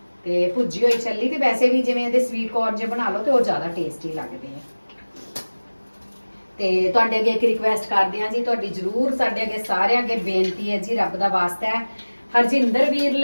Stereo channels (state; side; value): inverted; both; correlation -1.00